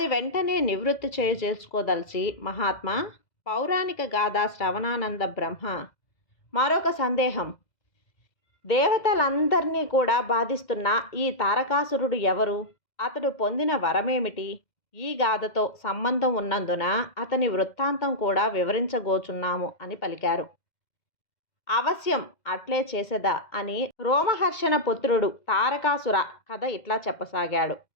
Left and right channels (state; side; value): late; right; 2.0 ms